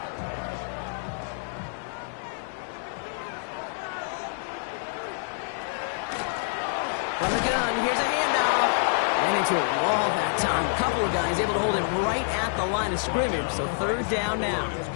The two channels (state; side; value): silent; right; digital silence